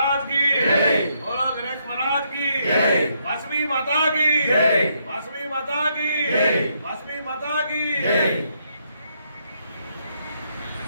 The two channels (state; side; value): inverted; both; correlation -0.75